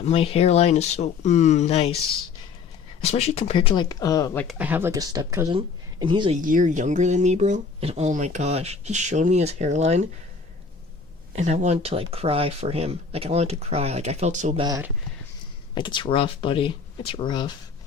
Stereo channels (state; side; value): quieter; right; 5.2 dB